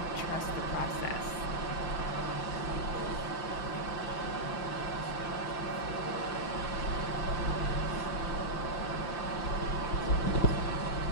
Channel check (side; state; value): right; late; 5.9 ms